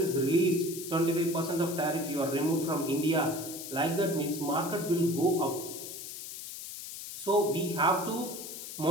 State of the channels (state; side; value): noise; left; hiss, 9 dB below the sound